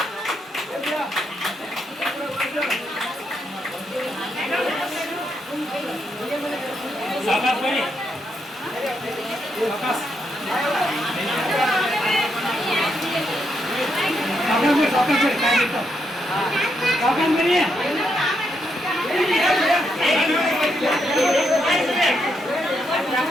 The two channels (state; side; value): normal; both; correlation 0.79